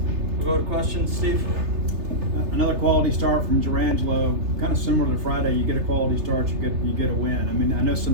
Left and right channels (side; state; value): left; late; 3.3 ms